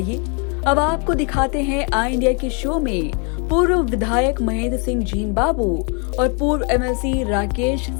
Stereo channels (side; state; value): right; quieter; 36.5 dB